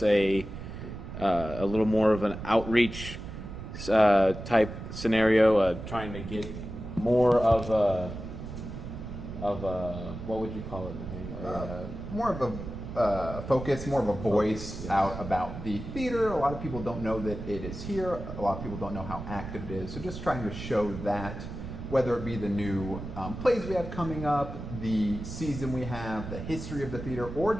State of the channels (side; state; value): right; noise; rumble, 9 dB below the sound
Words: a little more of an outreach type scenario, trying to get more of what would you call it, Nathaniel? More of a focus, more of a voice out about the theater. A lot of people don't know that it is here. A lot of people don't know how active it is. So just trying to show that, whether it be the new plays we have coming up, the season we have, the history of the theater, or